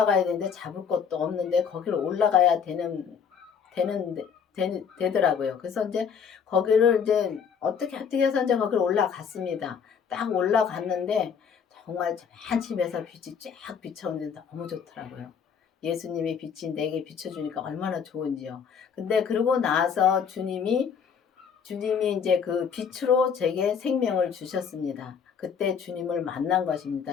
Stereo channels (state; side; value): quieter; right; 6.8 dB